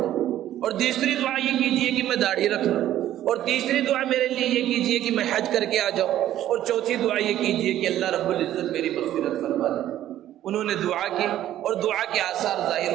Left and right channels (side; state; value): left; quieter; 12.6 dB